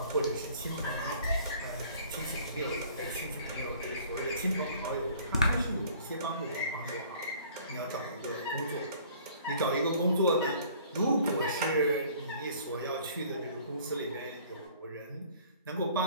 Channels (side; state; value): both; inverted; correlation -0.53